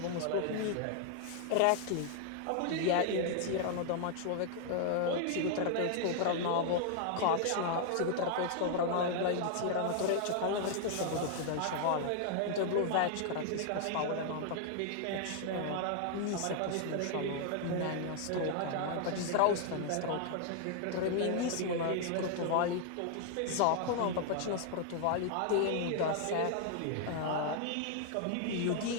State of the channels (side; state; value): both; different; correlation 0.00